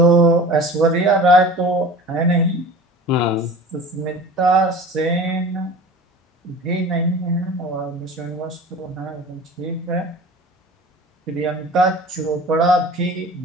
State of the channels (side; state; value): both; normal; correlation 0.39